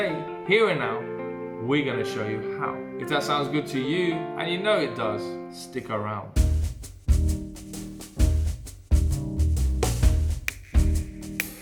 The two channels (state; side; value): identical; both; correlation 1.00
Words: here and now, we're gonna show you how. If that sounds good to you, and you know it does, stick around.